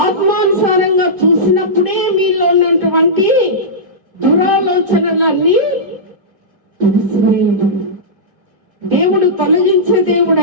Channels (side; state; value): left; late; 1.8 ms